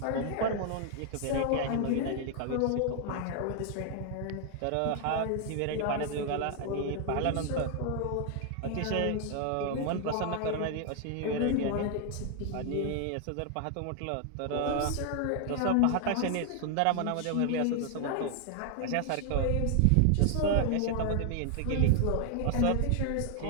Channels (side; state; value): both; different; correlation 0.00